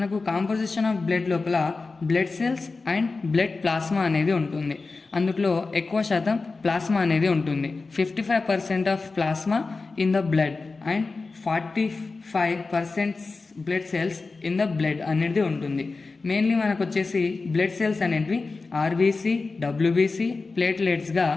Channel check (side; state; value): right; quieter; 3.9 dB